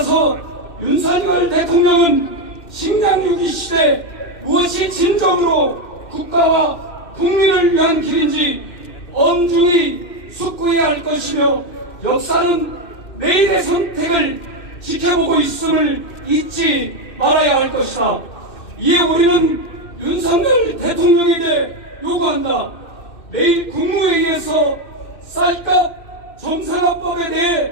윤석열 대통령은 식량 위기 시대 무엇이 진정으로 국가와 국민을 위한 길인지 엄중히 숙고해야 할 것이며 역사는 내일의 선택을 지켜보고 있음을 잊지 말아야 할 것이다. 이에 우리는 윤석열 대통령에게 요구한다. 내일 국무회의에서 쌀값 정상화법에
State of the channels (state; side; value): late; right; 2.6 ms